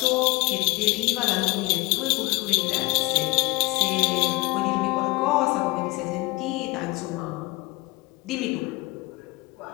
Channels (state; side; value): quieter; right; 23.0 dB